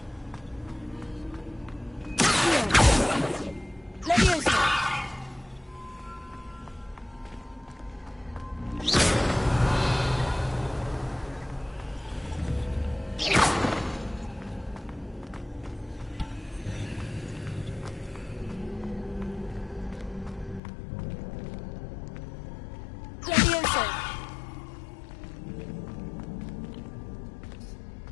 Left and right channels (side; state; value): right; drops out; at 20.6 s